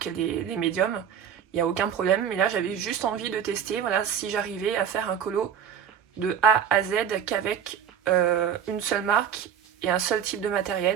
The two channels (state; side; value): quieter; left; 8.5 dB